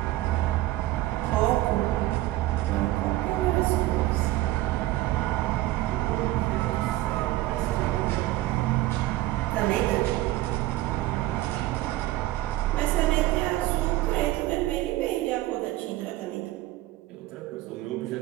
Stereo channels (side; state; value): left; quieter; 16.6 dB